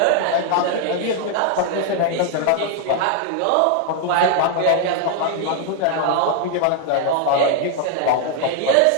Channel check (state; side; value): different; both; correlation 0.00